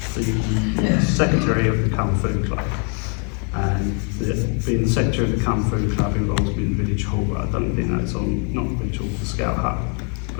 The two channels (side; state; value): right; quieter; 39.1 dB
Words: the secretary of the Kung Fu Club. And being the secretary of the Kung Fu Club involves me in the village hall, but I don't think that's on, not the village hall, the Scout Hut,